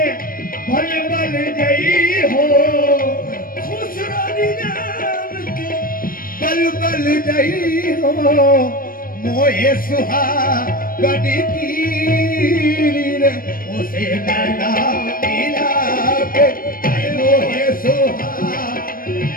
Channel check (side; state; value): right; late; 0.41 ms